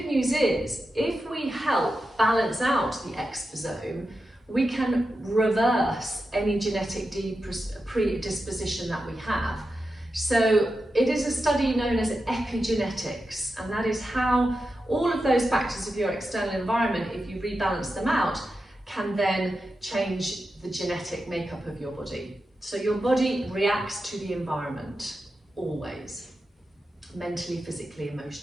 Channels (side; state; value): both; normal; correlation 0.90